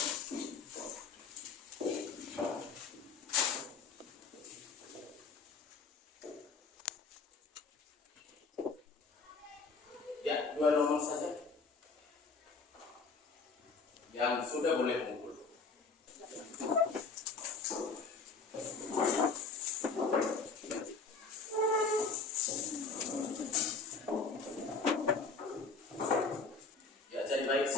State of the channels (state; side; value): quieter; right; 4.4 dB